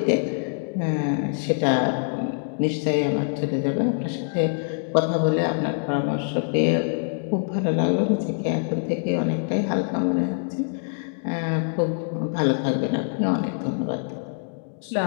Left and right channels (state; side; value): silent; right; digital silence